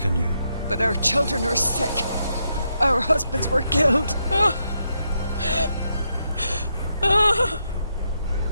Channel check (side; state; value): both; inverted; correlation -0.81